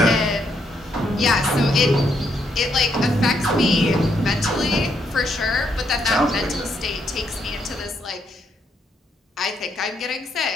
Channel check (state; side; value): normal; both; correlation 0.76